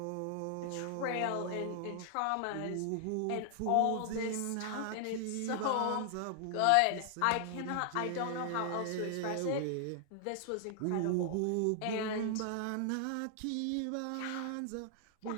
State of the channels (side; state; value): both; different; correlation 0.00